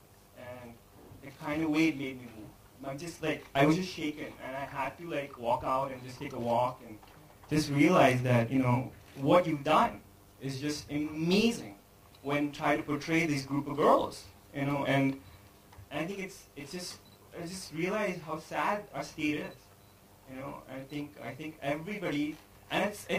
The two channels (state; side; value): identical; both; correlation 1.00